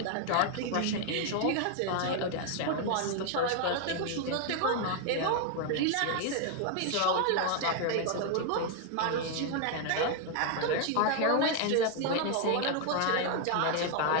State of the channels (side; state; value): both; different; correlation 0.00